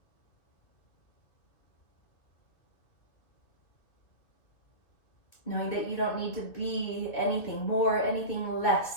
Knowing that you don't need to be anything more, anything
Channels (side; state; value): right; late; 2.4 ms